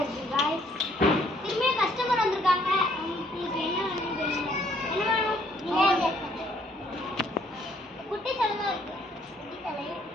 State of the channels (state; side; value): normal; both; correlation 0.65